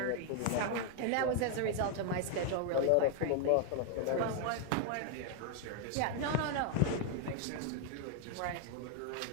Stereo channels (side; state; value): both; different; correlation 0.00